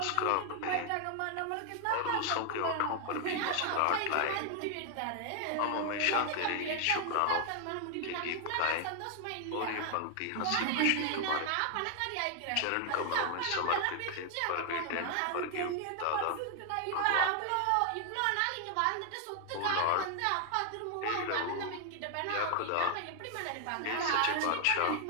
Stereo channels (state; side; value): different; both; correlation 0.00